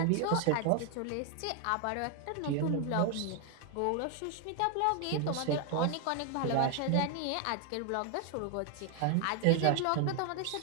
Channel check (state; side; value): different; both; correlation 0.00